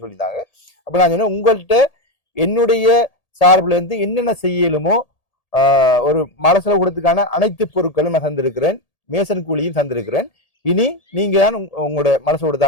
சொல்லியிருந்தாங்க. அப்ப நான் சொன்னேன், உங்கள்கிட்ட என்னுடைய சார்புல இருந்து என்னென்ன செய்யலுமோ ஒரு மலசல கூடத்துக்கான அனைத்து பொருட்களும் நான் தந்திருக்கிறேன், மேசன் கூலியும் தந்திருக்கிறேன், இனி நீங்க தான் உங்களோட மலசோட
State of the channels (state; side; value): late; right; 1.8 ms